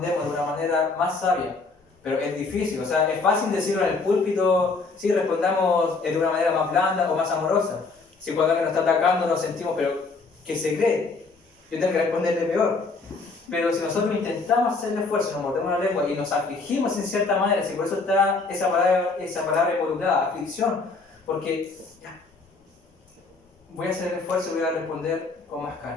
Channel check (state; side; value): quieter; right; 4.0 dB